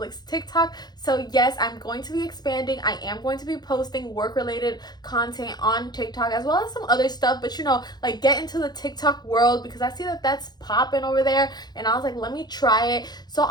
TikTok. So yes, I'm going to be expanding. I am going to be posting work-related content on TikTok as well as some other stuff. But you know, like get into the TikTok world because I see that that's popping over there. And I was like, let me try it. So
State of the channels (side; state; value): right; late; 0.20 ms